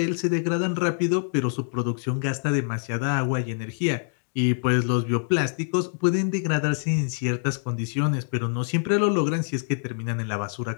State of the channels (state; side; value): silent; right; digital silence